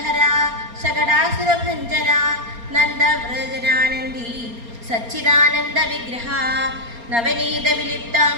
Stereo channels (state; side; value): late; left; 4.3 ms